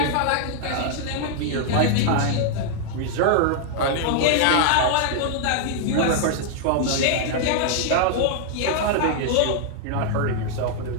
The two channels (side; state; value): both; different; correlation 0.00